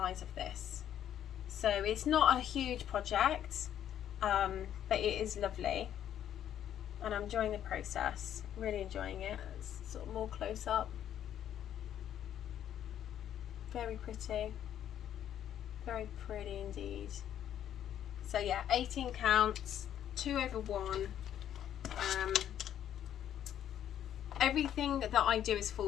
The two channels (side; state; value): right; quieter; 10.4 dB